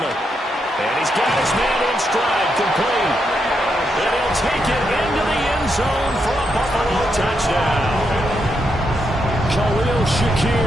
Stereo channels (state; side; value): normal; both; correlation 0.81